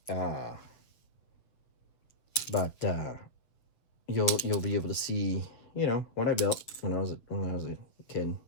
But you'll be able to see, you know, what I built when I was a kid.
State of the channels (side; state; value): right; late; 7.5 ms